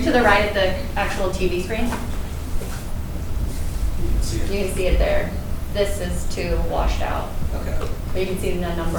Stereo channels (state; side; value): identical; both; correlation 1.00